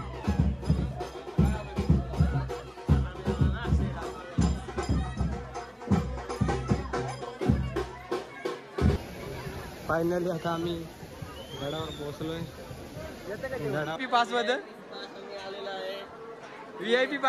फायनली आता आम्ही गडावर पोहोचलोय. व्हीआयपी पास बद्दल व्हीआयपी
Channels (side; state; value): both; identical; correlation 1.00